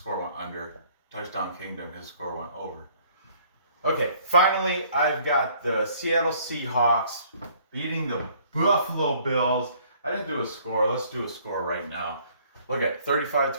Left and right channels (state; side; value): inverted; both; correlation -0.59